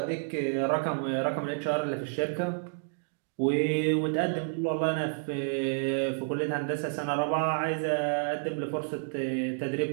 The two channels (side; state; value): left; silent; digital silence